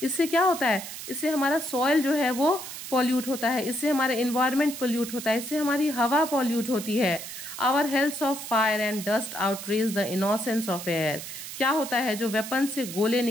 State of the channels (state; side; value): noise; right; hiss, 10 dB below the sound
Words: इससे क्या होता है, इससे हमारा सॉइल जो है वो पॉल्यूट होता है, इससे हमारा इन्वायरमेंट पॉल्यूट होता है, इससे हमारी हवा पॉल्यूट होती है। Our hells of fire and dust outrage the innocence of air. क्या होता है, जो वेपन से गोले